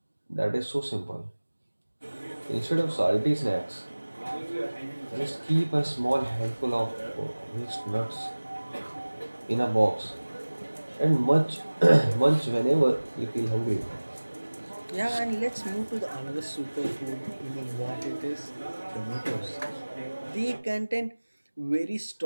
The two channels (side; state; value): both; inverted; correlation -1.00